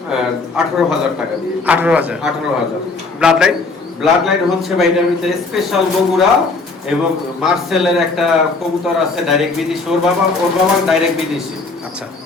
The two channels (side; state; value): right; quieter; 3.8 dB